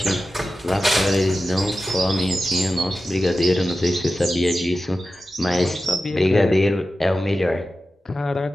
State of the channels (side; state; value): both; normal; correlation 0.93